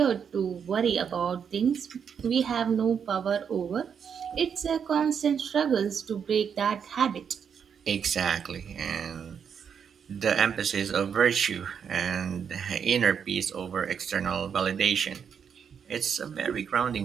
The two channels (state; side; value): quieter; left; 7.3 dB